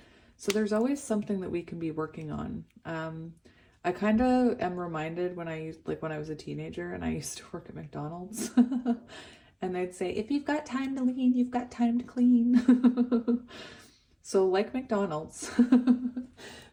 So there's always something that we can be working on. I kind of am reminded when I was a teenager and I used to work at McDonald's and they'd say, if you've got time to lean, you've got time to clean. So like McDonald's,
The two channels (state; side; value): identical; both; correlation 1.00